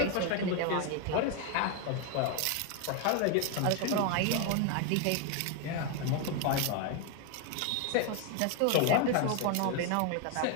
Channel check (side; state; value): both; different; correlation 0.01